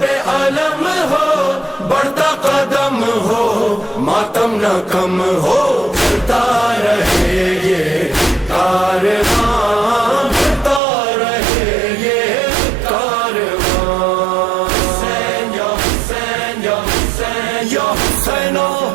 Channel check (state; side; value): drops out; left; at 10.8 s